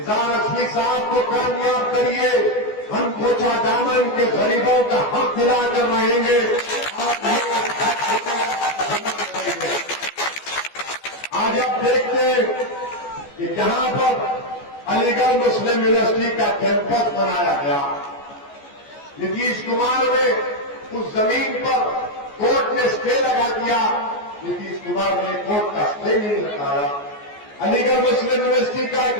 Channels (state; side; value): late; right; 14 ms